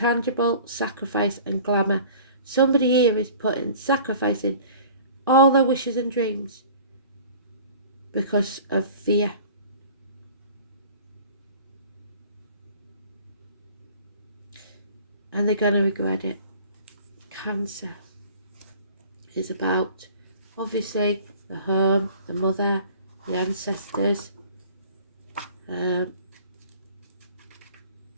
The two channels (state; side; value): inverted; both; correlation -0.46